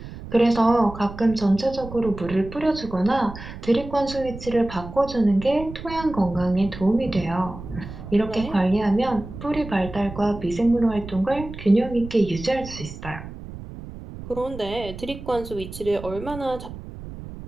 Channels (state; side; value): noise; right; rumble, 12 dB below the sound